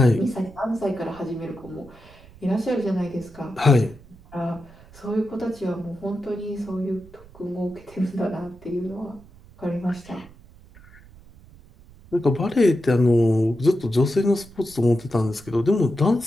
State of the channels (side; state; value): right; noise; rumble, 23 dB below the sound